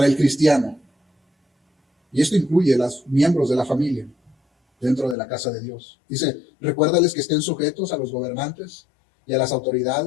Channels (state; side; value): drops out; right; at 5.2 s